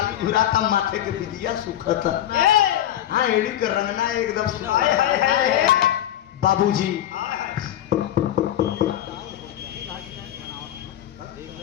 धुराता माथे के विदिया सुखत हाँ एड़ी कर रंगना एकदम बाबूजी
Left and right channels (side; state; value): right; quieter; 12.0 dB